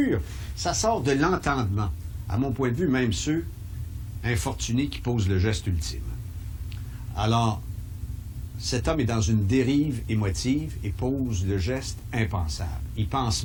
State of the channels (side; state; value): both; identical; correlation 1.00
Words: ça sort de l'entendement. À mon point de vue, même ceux infortunés qui posent le geste ultime. Alors, cet homme est dans une dérive émotive et pose le geste impensable. Il pense